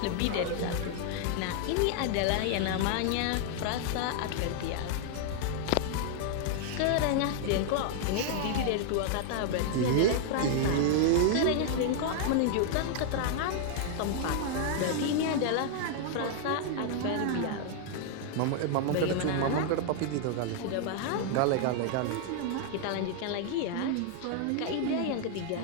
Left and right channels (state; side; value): different; both; correlation 0.00